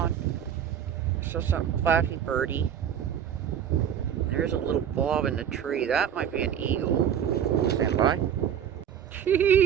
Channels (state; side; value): quieter; left; 9.1 dB